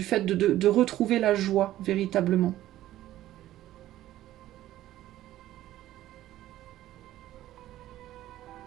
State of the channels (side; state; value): left; quieter; 14.0 dB